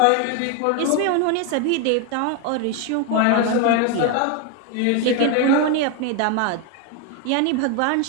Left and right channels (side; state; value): both; different; correlation 0.01